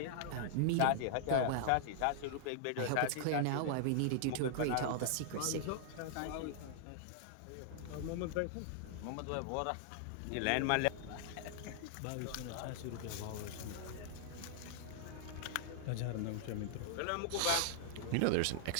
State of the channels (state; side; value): different; both; correlation -0.01